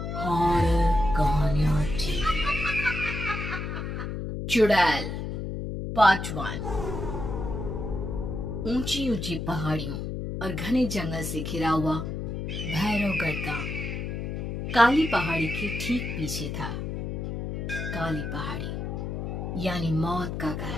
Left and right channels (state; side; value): noise; left; hum, 4 dB below the sound